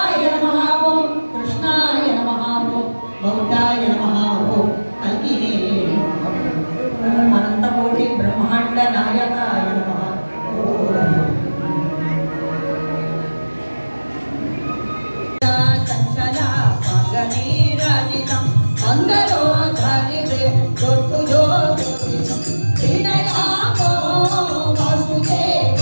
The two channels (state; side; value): inverted; both; correlation -1.00